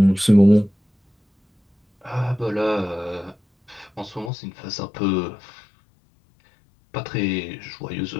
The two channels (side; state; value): right; drops out; at 4.3 s